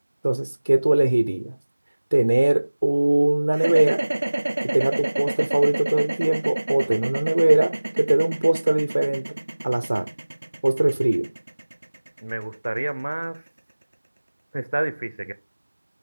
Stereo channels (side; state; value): both; inverted; correlation -1.00